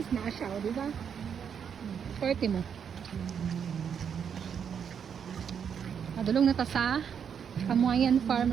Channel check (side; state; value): left; quieter; 7.6 dB